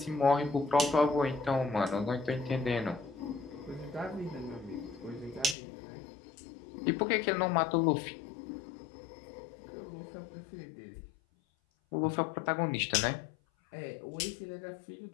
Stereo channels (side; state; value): right; drops out; at 5.6 s